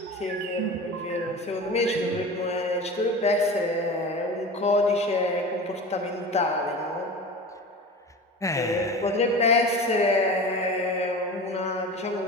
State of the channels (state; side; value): normal; both; correlation 0.33